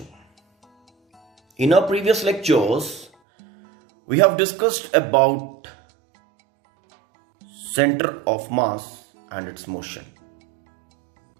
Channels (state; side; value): drops out; left; at 3.1 s